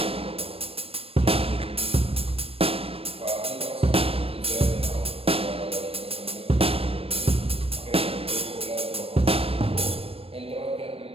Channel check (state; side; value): late; left; 0.28 ms